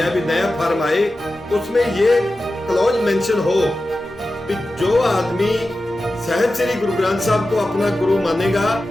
है। भी नया फार्म आए, उसमें ये क्लॉज मेंशन हो कि जो आदमी साहिब श्री गुरु ग्रंथ साहब को अपना गुरु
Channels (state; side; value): normal; both; correlation 0.93